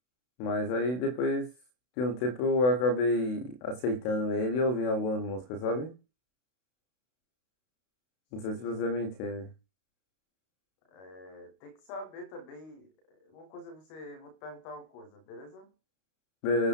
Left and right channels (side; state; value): right; late; 32 ms